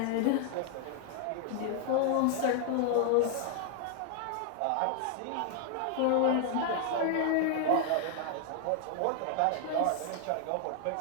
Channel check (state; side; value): different; both; correlation 0.00